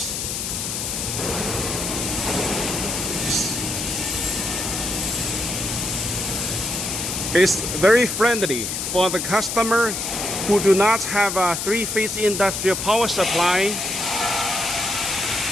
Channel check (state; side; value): noise; left; hiss, 3 dB below the sound